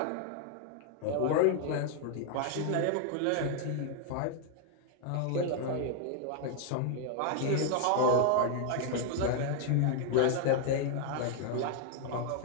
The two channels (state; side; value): different; both; correlation 0.00